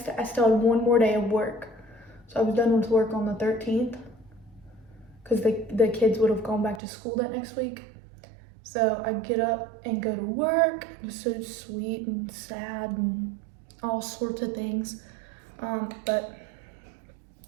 I still had one more day of work. So I was done with work on the 13th because the kids would have gone back to school that next week. So I get up and go to work. It was so sweet and sad and all sorts of things. But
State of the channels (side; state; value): left; drops out; at 6.8 s